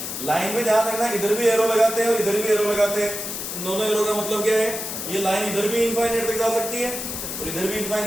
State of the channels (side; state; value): left; noise; hiss, 5 dB below the sound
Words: लाइन में ध्यान रखना, इधर भी एरो लगाते हैं और इधर भी एरो लगाते हैं। इन दोनों एरो का मतलब क्या है, ये लाइन इधर भी इनफाइनाइट तक जा सकती है और इधर भी